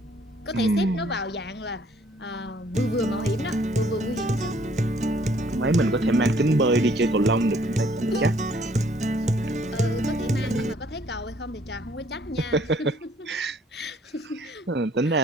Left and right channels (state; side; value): normal; both; correlation 0.62